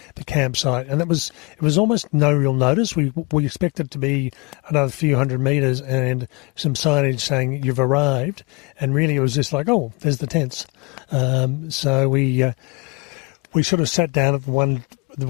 campsite, and it was almost no real notice. We expected it to be another few hundred metres and some signage saying you've arrived, and really it was just like, oh, there's the tents. So we sort of sat down at the one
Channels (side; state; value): right; quieter; 28.6 dB